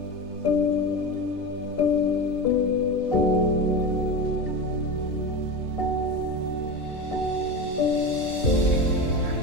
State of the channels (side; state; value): right; late; 3.1 ms